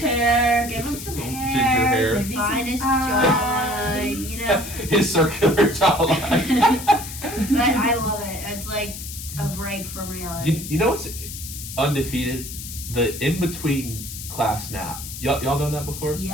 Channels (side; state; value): left; noise; hiss, 10 dB below the sound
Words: hair. Give him some Ginger hair. hair. Maybe some Finest eyes. jawline, you know? His circular jawline. But I love it. It's like a break from reality. You know what's undefeated? The in-between class nap. Y'all done that before?